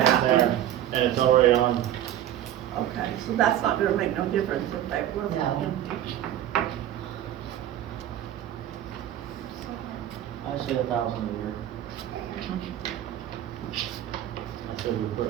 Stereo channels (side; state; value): left; quieter; 11.8 dB